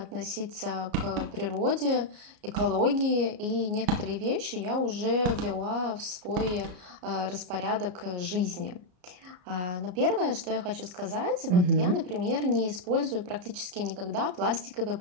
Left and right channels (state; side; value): late; left; 33 ms